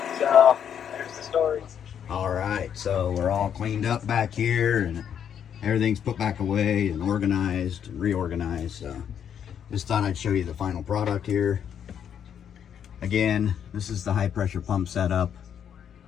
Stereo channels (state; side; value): quieter; right; 8.6 dB